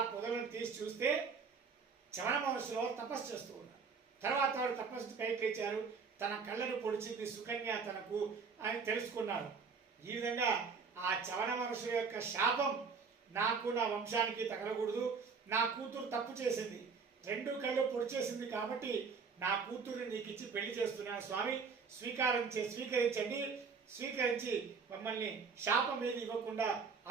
పొదలను తీసి చూస్తే చవన మహర్షులు తపస్సు చేస్తూ ఉన్నారు. తర్వాత వాడు తపస్సు పైకి లేచారు. తన కళ్ళను పొడిచింది సుకన్య తనకు అని తెలుసుకున్నారు. ఈ విధంగా ఆ చవన మహర్షుల యొక్క శాపం నాకు నా వంశానికి తగలకూడదు. నా కూతురు తప్పు చేసింది, 2 కళ్ళు పొడిచేసింది కాబట్టి నా కూతురు నీకు ఇచ్చి పెళ్లి చేస్తున్నాను స్వామి, స్వీకరించండి, స్వీకరించి మమ్మల్ని శాపం ఏది ఇవ్వకుండా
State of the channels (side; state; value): left; quieter; 5.3 dB